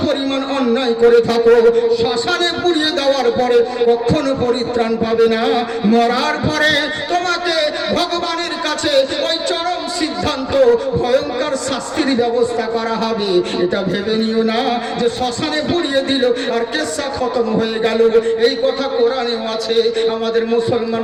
পরিমাণ অন্যায় করে থাকো, শ্মশানে পুড়িয়ে দেওয়ার পরে কখনো পরিত্রাণ পাবে না। মরার পরে তোমাকে ভগবানের কাছে ওই চরম সিদ্ধান্ত, ভয়ঙ্কর শাস্তির ব্যবস্থা করা হবে। এটা ভেবে নিও না যে শ্মশানে পুড়িয়ে দিল আর কেসা খতম হয়ে গেল। এই কথা কোরআনেও আছে। আমাদের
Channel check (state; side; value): noise; left; rumble, 28 dB below the sound